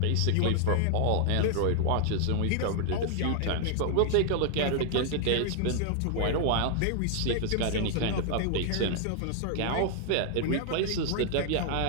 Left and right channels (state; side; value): different; both; correlation 0.00